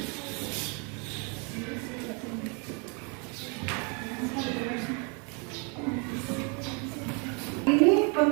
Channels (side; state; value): left; quieter; 34.5 dB